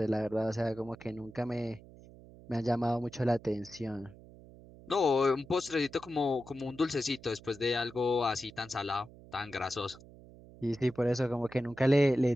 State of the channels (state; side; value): noise; right; hum, 20 dB below the sound